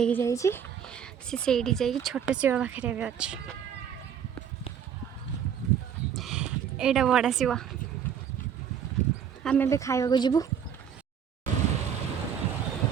जाइए जा छोट शिव पाखे भी अच्छे यहाँ बड़ा शिव आम ए खाइबा जीवु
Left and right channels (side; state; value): left; quieter; 8.2 dB